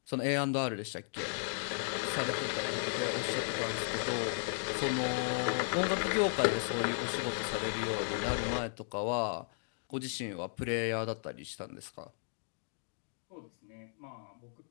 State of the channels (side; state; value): right; silent; digital silence